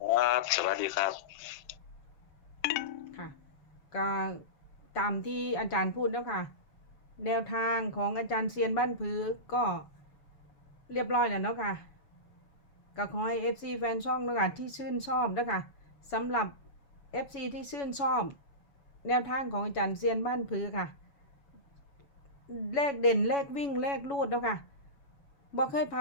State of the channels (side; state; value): right; late; 7.1 ms